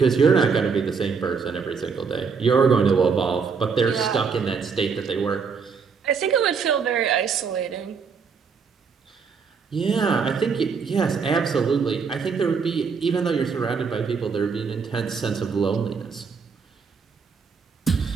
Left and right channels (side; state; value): left; quieter; 5.6 dB